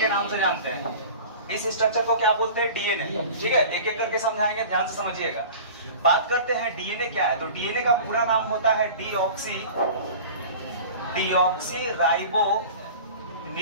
नाम से जानते हैं। इस स्ट्रक्चर को क्या बोलते हैं? डीएनए। ठीक है, एक एक करके समझाएंगे, ध्यान से समझिएगा। बात करते हैं डीएनए क्या है। तो डीएनए का पूरा नाम होता है डीऑक्सी राइबो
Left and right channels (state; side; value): inverted; both; correlation -0.39